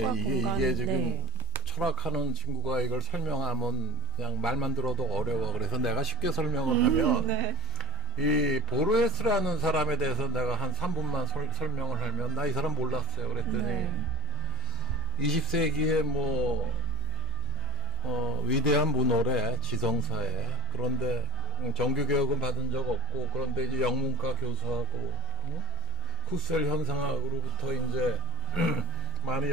아니 공간. 이게 지금 철학하는 친구가 이걸 설명하면 그냥 말만 들어도 어려워. 그래서 내가 쉽게 설명을 하면 네. 이 보르헤스라는 사람에 대해서 내가 한 3분만 설명을 하면 나 이 사람 몰랐어요. 그랬더니 네. 20세기에 뭐 위대한 문호래 지성사에 그런데 정규교육은 받은 적 없고 그런데 이제 영문과 교수하고 후셀 현상학으로부터 이제 많이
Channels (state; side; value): normal; both; correlation 0.25